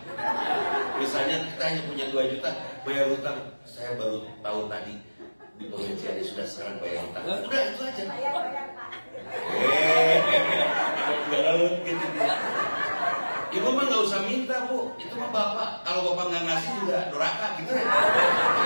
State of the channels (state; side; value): inverted; both; correlation -1.00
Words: Misalnya kita hanya punya 2 juta bayar hutang. Saya baru tahu tadi di pengajiannya sudah sekarang bayar hutang. Udah itu aja. Gitu. Ibu mah nggak usah minta bu, itu mah bapak. Kalau bapak nggak ngasih juga doraka gitu.